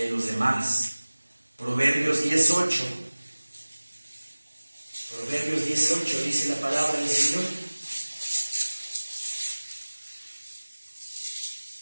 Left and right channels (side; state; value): both; inverted; correlation -1.00